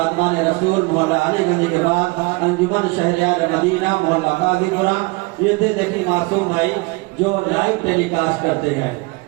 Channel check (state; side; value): quieter; left; 25.7 dB